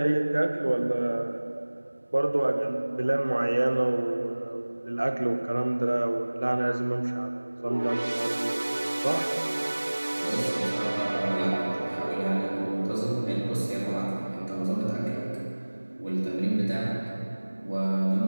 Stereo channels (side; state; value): both; inverted; correlation -1.00